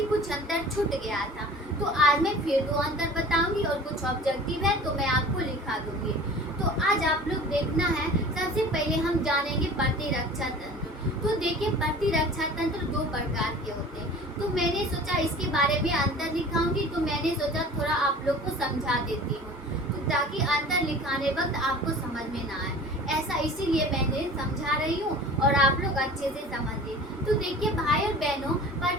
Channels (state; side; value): normal; both; correlation 0.42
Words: कुछ अंतर छूट गया था। तो आज मैं फिर 2 अंतर बताऊंगी और कुछ ऑब्जेक्टिव है तो मैं आपको लिखा दूंगी। तो आज आप लोग देखना है, सबसे पहले हम जानेंगे प्रतिरक्षा तंत्र। तो देखिए, प्रतिरक्षा तंत्र 2 प्रकार के होते हैं। तो मैंने सोचा इसके बारे में अंतर लिखाऊंगी, तो मैंने सोचा थोड़ा आप लोग को समझा देती हूँ, तो ताकि अंतर लिखाने वक्त आपको समझ में ना आए। ऐसा इसीलिए मैंने समझा रही हूँ और आप लोग अच्छे से समझिए। तो देखिए भाई और बहनों,